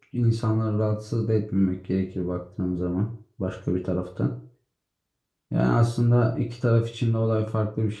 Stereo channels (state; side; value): identical; both; correlation 1.00